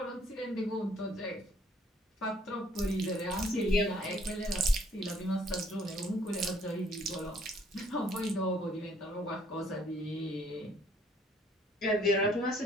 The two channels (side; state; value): both; normal; correlation 0.62